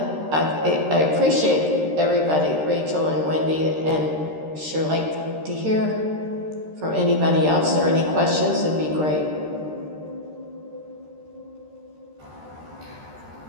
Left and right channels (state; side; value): late; left; 13 ms